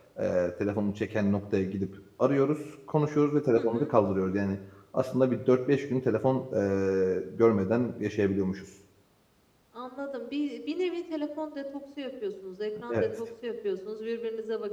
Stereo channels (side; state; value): both; identical; correlation 1.00